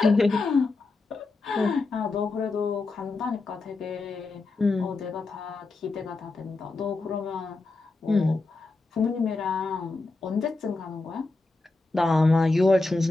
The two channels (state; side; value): quieter; right; 3.4 dB